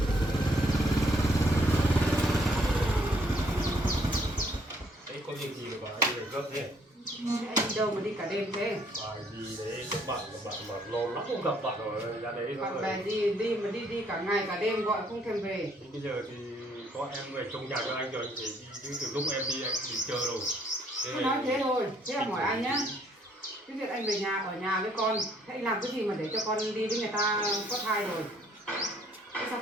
Đấy có việc gì mà anh lại gấp thế? Anh đi đâu mà đi cả đêm thế? Bài gì đấy các bạn mà lâu lắm không gặp bạn rồi ra đấy Bạn rồi. bè đi mà đi cả ngày cả đêm gọi không thèm về. Thì bây giờ thì có em về trong nhà cho anh rồi, anh phải đi chứ từ lúc em đi anh thì chờ rồi. Tôi nói thế thôi, thế là hỏi anh nhá. Cái việc anh về nhà ở nhà với con, thế anh làm cái gì mà để cho con đi với người ta có thai rồi? Thế sao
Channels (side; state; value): both; normal; correlation 0.65